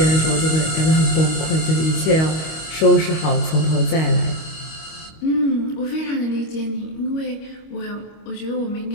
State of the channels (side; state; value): right; late; 25 ms